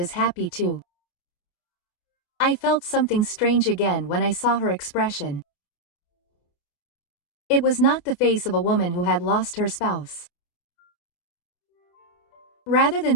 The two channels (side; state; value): right; late; 28 ms